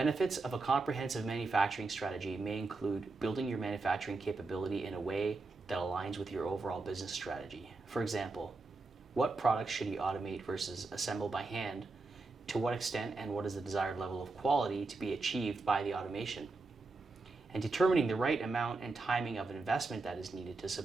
of a comprehensive manufacturing strategy may include building your manufacturing capability in a way that aligns with your overall business strategy. For example, what products should you automate versus assemble by hand to what extent and what is the desired level of quality to be achieved by the automation. And determining the right amount and timing of investment that is needed to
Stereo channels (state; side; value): quieter; left; 3.7 dB